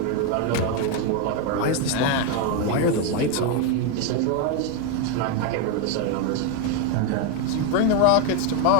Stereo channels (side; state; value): both; different; correlation 0.01